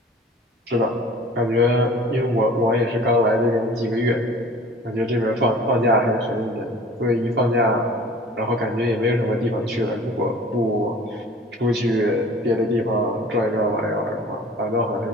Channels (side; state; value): both; normal; correlation 0.45